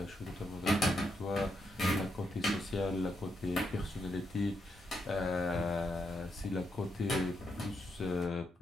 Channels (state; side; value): normal; both; correlation 0.81